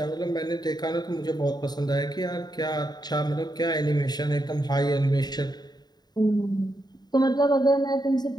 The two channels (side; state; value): right; late; 0.20 ms